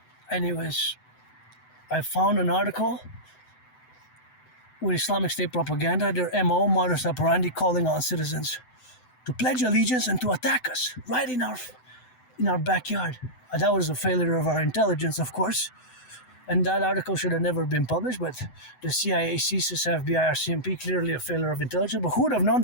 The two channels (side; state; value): right; late; 7.9 ms